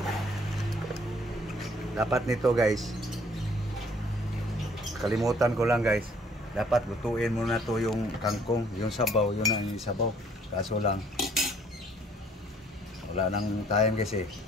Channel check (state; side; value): normal; both; correlation 0.60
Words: Dapat nito guys, kalimutan ko lang guys, dapat lutuin muna to yung kangkong, yung sabaw, yun ang sabaw. Kaso lang wala nang time kasi